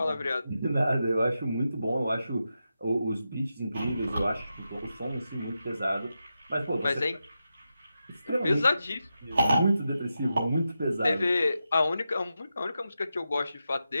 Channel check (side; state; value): both; inverted; correlation -0.88